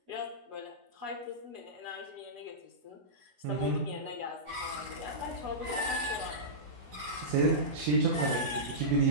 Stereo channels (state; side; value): late; left; 16 ms